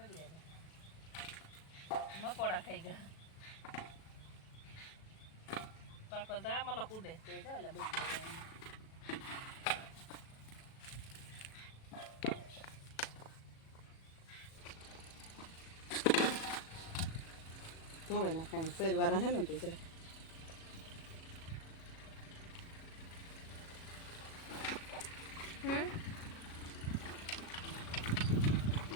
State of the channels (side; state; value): right; late; 37 ms